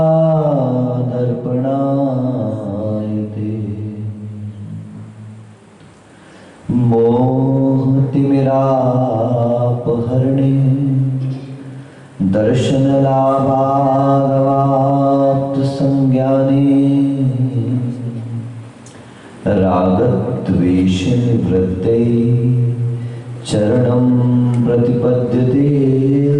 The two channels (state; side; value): identical; both; correlation 1.00